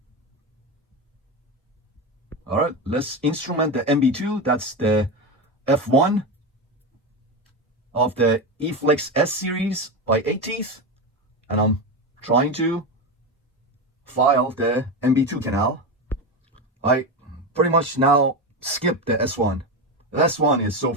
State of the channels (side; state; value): both; normal; correlation 0.17